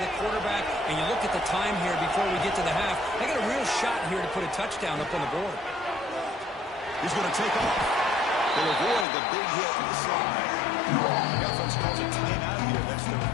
quarterback, and you look at the time here before we get to the half. They got a real shot here to put a touchdown up on the board. He's going to take off. They'll avoid the big hit in the slide. The offense calls a timeout here. That's their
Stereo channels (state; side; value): drops out; right; at 9.1 s